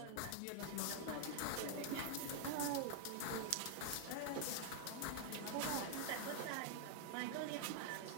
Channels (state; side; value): different; both; correlation 0.00